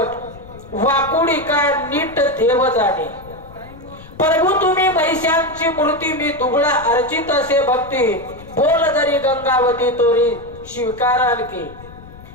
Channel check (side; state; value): left; noise; rumble, 19 dB below the sound